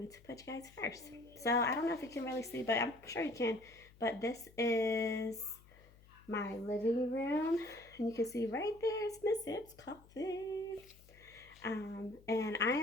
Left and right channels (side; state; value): left; noise; hum, 24 dB below the sound